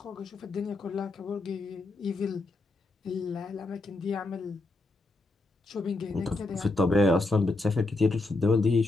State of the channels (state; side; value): quieter; right; 3.1 dB